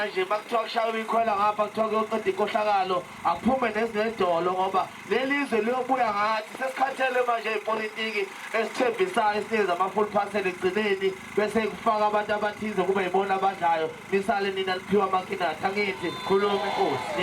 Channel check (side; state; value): both; identical; correlation 1.00